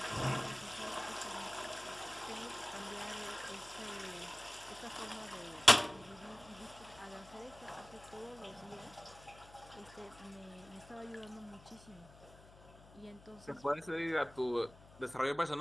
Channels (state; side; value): noise; left; hum, 21 dB below the sound